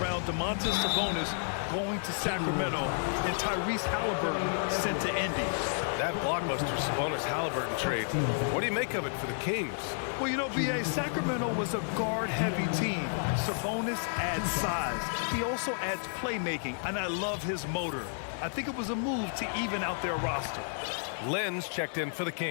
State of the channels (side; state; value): right; silent; digital silence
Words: Domantas Sabonis going to Sacramento and Tyrese Halliburton sent to Indy. That blockbuster Sabonis-Halliburton trade. What do you make of it for the Kings? Well, you know, B.A., Sacramento was a guard-heavy team. Sabonis adds size. He also adds playmaking, and I love his motor. I think it was a move to even out their roster. Lenz checked in for the